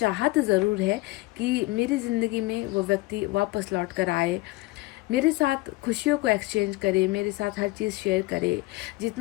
ज़रूर है कि मेरी ज़िंदगी में वो व्यक्ति वापस लौट कर आए, मेरे साथ खुशियों को एक्सचेंज करे, मेरे साथ हर चीज़ शेयर करे।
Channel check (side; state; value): right; quieter; 20.8 dB